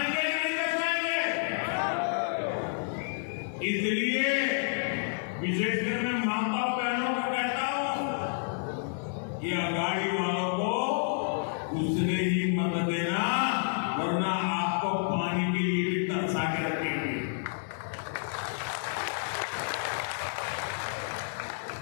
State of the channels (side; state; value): right; silent; 58 dB below the other